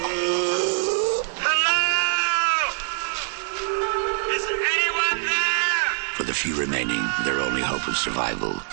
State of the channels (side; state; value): left; silent; 63 dB below the other